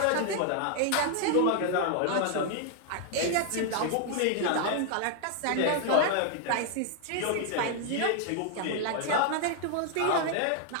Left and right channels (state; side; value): different; both; correlation 0.00